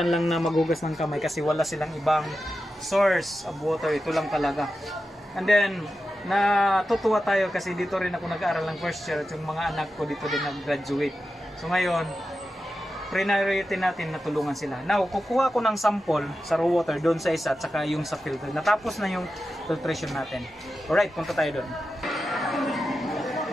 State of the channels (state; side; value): normal; both; correlation 0.91